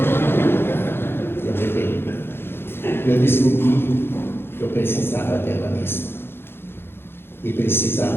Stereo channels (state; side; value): late; right; 0.11 ms